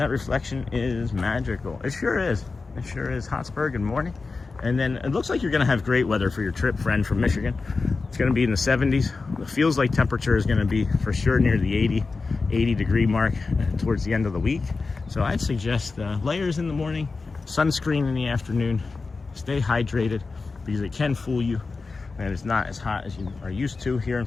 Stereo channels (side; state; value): right; quieter; 4.1 dB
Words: reflection is magical. It sure is. It sure is. Hotspur, good morning. And then it looks like you're going to have great weather for your trip, friend, from Michigan. It's going to be in the 70s. It feels like temperature is going to be for sure near the 80 degree mark towards the end of the week. So I'd suggest layers in the morning, sunscreen in the afternoon. Stay hydrated, because it can fool you, and it's not as hot as you are used to here in